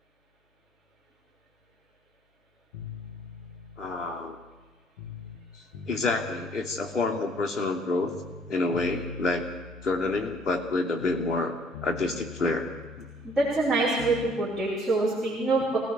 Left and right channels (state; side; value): normal; both; correlation 0.60